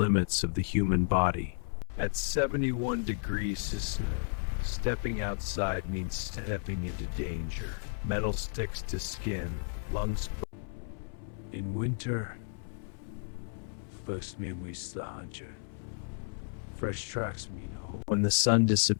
of the human body. At 71 degrees, stepping outside means stepping into danger. Metal sticks to skin, lungs. In winter, first means the hunter. Fresh tracks mean hope. When the sun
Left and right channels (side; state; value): right; silent; 56 dB below the other